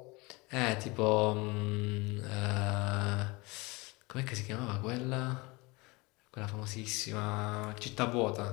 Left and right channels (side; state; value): right; quieter; 25.0 dB